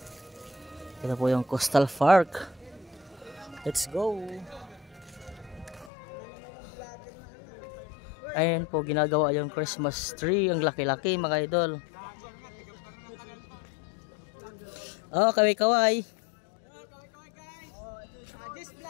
Ito po yung Coastal Park. Let's go! Ayan po, ginagawa yung Christmas tree. Ang laki-laki mga idol. Oh, kaway-kaway. This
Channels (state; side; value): drops out; right; at 5.9 s